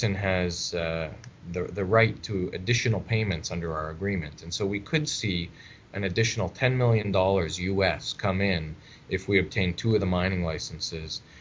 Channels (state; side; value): identical; both; correlation 1.00